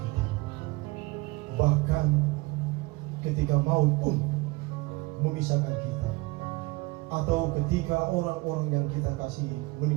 kita. Bahkan ketika maut pun memisahkan kita, atau ketika orang-orang yang kita kasihi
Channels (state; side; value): quieter; left; 23.6 dB